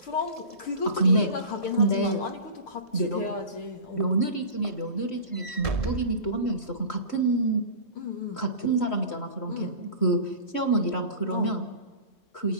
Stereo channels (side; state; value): right; late; 3.1 ms